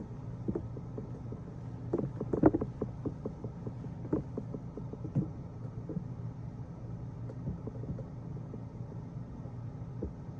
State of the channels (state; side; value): identical; both; correlation 1.00